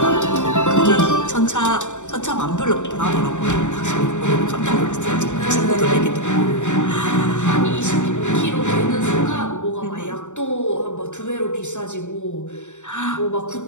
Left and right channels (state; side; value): late; right; 0.85 ms